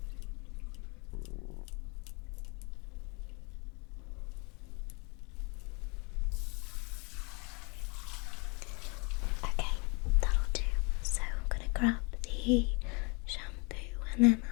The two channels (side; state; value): right; quieter; 31.2 dB